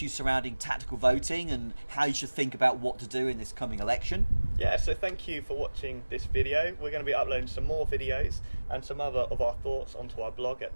surrounding tactical voting and how you should think about what to do in this coming election. Yeah, so thank you for watching this video. We're going to be uploading some more videos and some other of our thoughts onto our blog at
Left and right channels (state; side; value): inverted; both; correlation -1.00